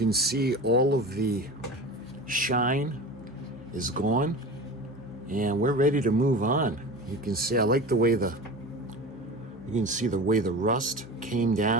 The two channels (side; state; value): both; normal; correlation 0.32